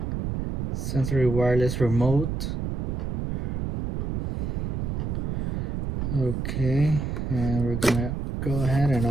Sensory wireless remote. Okay, and we're gonna go ahead and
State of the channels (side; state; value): right; noise; rumble, 1 dB below the sound